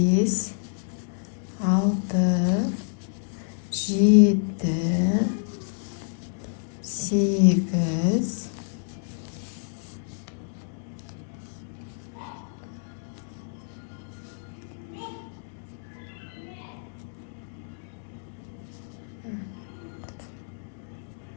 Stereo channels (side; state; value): right; silent; digital silence